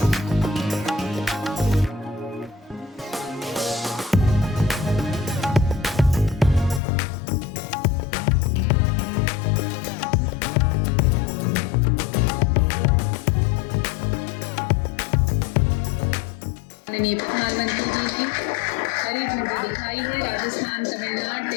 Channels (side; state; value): right; drops out; at 6.8 s